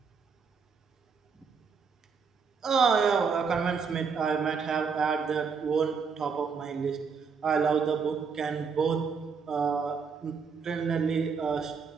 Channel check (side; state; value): left; quieter; 5.7 dB